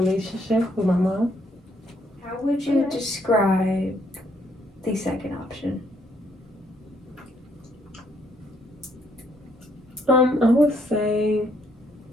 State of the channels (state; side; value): normal; both; correlation 0.70